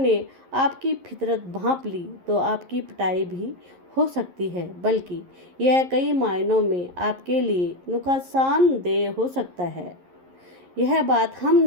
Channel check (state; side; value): late; left; 11 ms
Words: आपकी फितरत भांप ली तो आपकी पिटाई भी हो सकती है, बल्कि यह कई मायनों में आपके लिए नुकसानदेह हो सकता है। यह बात हम